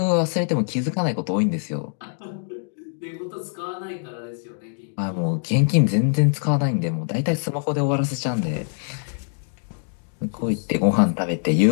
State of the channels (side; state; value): right; silent; digital silence